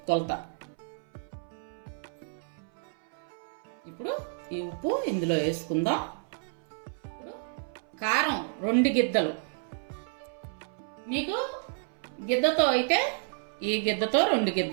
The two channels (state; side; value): silent; left; 57 dB below the other